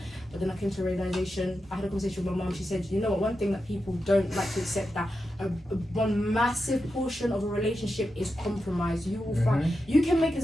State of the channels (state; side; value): normal; both; correlation 0.89